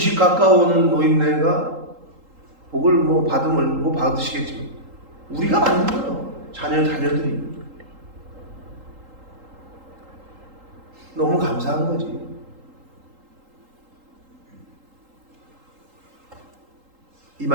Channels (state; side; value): late; left; 3.8 ms